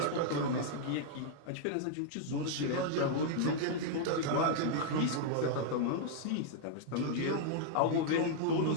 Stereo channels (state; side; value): different; both; correlation -0.01